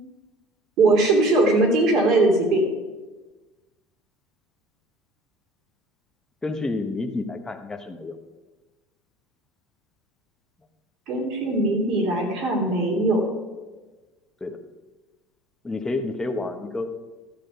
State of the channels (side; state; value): both; normal; correlation 0.47